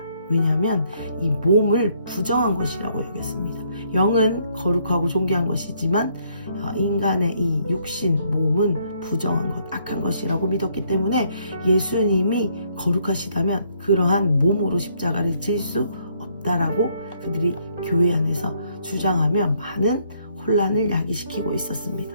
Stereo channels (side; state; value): both; inverted; correlation -0.68